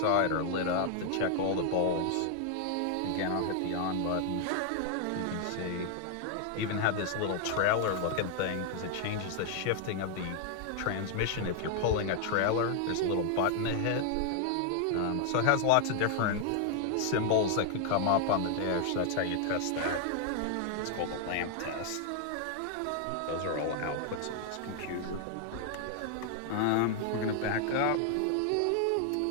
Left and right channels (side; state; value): both; different; correlation 0.00